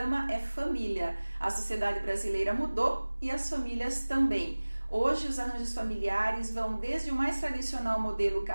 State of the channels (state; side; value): inverted; both; correlation -1.00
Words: é família. A sociedade brasileira mudou e as famílias também. Hoje, os arranjos familiares vão desde o mais tradicional modelo